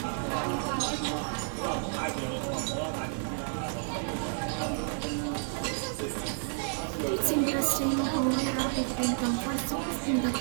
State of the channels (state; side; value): silent; left; digital silence